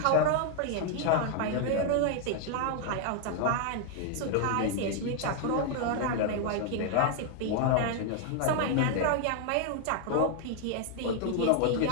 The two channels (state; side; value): different; both; correlation 0.00